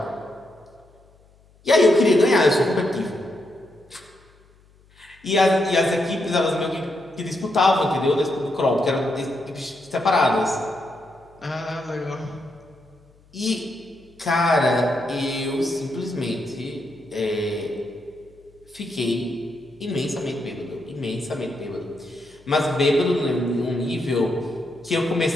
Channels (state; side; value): noise; left; hum, 30 dB below the sound